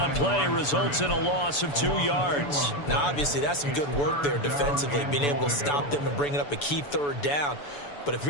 play results in a loss of 2 yards. Now, obviously, that's some good work there defensively, being able to stop them and bringing up a key third down. But if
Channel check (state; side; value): late; right; 6.9 ms